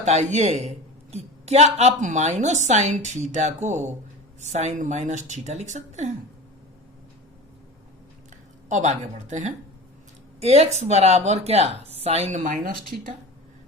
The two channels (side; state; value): both; normal; correlation 0.33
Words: कि क्या आप माइनस साइन थीटा को साइन माइनस थीटा लिख सकते हैं। अब आगे बढ़ते हैं, एक्स बराबर क्या, साइन माइनस थीटा,